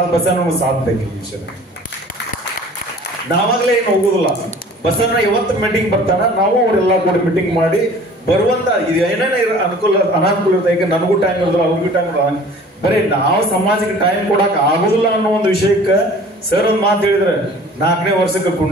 ಬಸನ್ನ ಸಾಥ್ ಬೇಕು. ಈ ವಿಷಯ ನಾವಾಗ್ಲೇ ಏನು ಹೋಗುದಿಲ್ಲ. ಬಸನ್ನ ಇವತ್ತು ಮೀಟಿಂಗ್ ಬರ್ತಾನ, ನಾವು ಅವರೆಲ್ಲ ಕೂಡ ಮೀಟಿಂಗ್ ಮಾಡಿ ಬರುವಂತ ಇದು ಏನೇನೇ ಅನುಕೂಲ ಅನಾನುಕೂಲ ಇರುತ್ತೆ. ಈಗ ನನಗೂ ಟೈಮ್ ಇರೋದಿಲ್ಲ, ಅವ್ರಿಗೂ ಟೈಮ್ ಇರೋಲ್ಲ. ಬರೀ ನಾವು ಸಮಾಜಕ್ಕೆ ಟೈಮ್ ಕೊಡಕ್ ಆಗುದಿಲ್ಲ ಅನ್ನೋ ಒಂದು ವಿಷಯಕ್ಕೆ ಸರ್ ಒಂದು ಮಾತು ಹೇಳಿದ್ರೆ 4ನೇ ವರ್ಷಕ್ಕೆ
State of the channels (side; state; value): both; normal; correlation 0.47